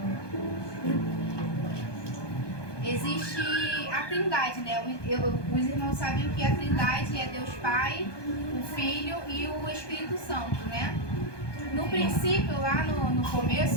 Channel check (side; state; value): right; late; 1.2 ms